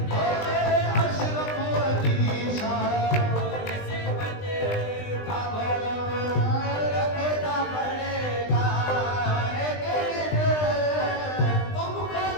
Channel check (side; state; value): right; late; 20 ms